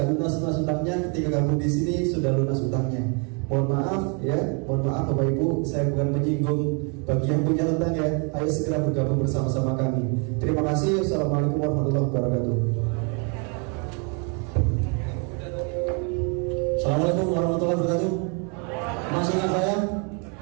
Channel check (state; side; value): quieter; left; 36.3 dB